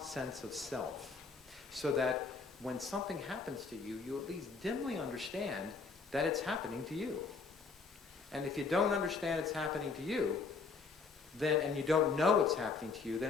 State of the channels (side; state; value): right; quieter; 4.6 dB